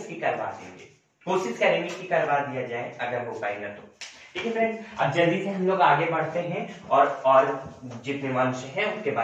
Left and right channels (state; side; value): identical; both; correlation 1.00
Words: करवा देंगे, कोशिश करेंगे कि करवा दिया जाए अगर हो पाएगा तो। ठीक है फ्रेंड्स, अब जल्दी से हम लोग आगे बढ़ते हैं और जितने वंश हैं उनके